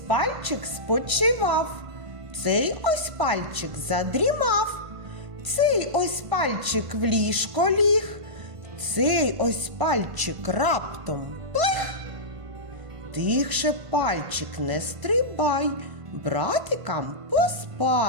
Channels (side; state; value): left; late; 1.5 ms